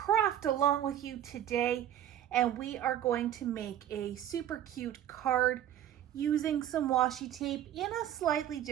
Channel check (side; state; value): left; quieter; 11.1 dB